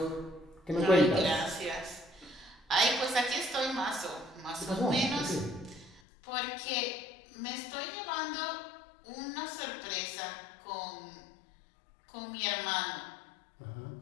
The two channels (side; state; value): right; drops out; at 6.0 s